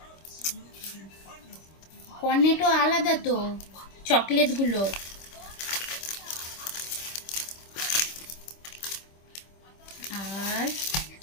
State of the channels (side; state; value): right; late; 26 ms